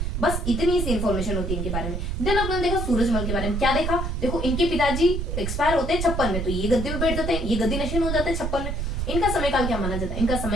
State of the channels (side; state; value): right; noise; rumble, 2 dB below the sound